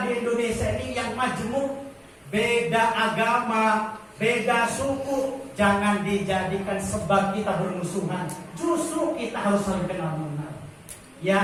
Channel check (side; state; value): both; identical; correlation 1.00